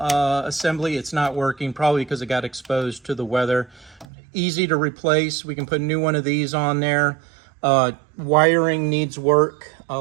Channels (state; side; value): drops out; left; at 4.0 s